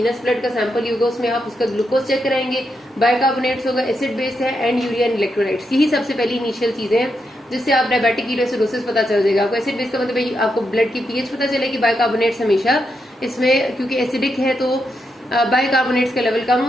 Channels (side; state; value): both; normal; correlation 0.83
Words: ब्लड का सैंपल होगा, उसमें आप उसका ग्लूकोज चेक कराएंगे, बाइकार्बोनेट्स होगा, एसिड बेस्ड है, एंड यूरिया एंड इलेक्ट्रोलाइट्स, यही सबसे पहली इनिशियल चीजें हैं जिससे आप डायबिटिक कीटोएसिडोसिस पता चल जाएगा आपको। एसिड बेस का मतलब आपको ब्लड की पीएच पता चलेगी, बाइकार्बोनेट्स हमेशा इसमें क्योंकि एसिडिक है तो बाइकार्बोनेट्स का लेवल कम